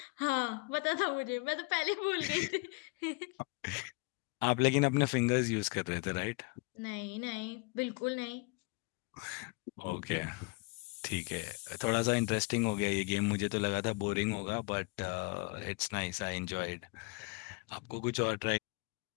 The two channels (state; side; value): quieter; right; 29.6 dB